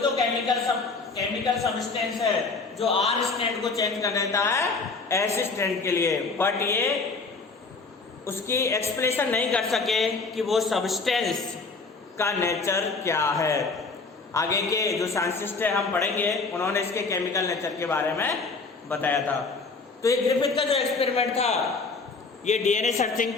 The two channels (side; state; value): right; quieter; 4.2 dB